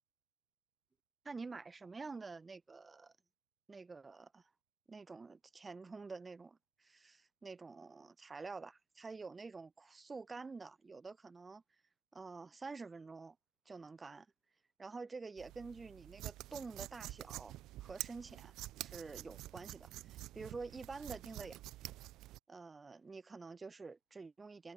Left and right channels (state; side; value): quieter; left; 5.4 dB